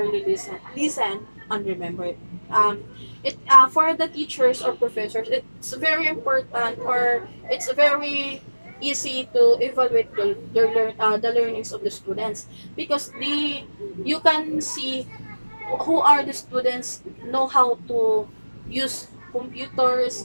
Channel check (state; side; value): inverted; both; correlation -1.00